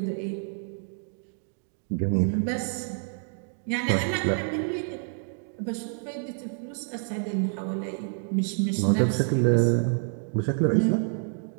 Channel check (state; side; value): silent; left; 59 dB below the other